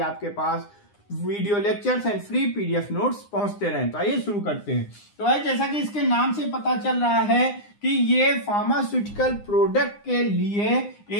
आपके पास video lectures and free PDF notes पहुंचते रहें। तो आइए शुरू करते हैं। तो भाई, जैसा कि इसके नाम से पता चल रहा है कि ये फार्मास्यूटिकल प्रोडक्ट के लिए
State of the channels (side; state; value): right; late; 9.8 ms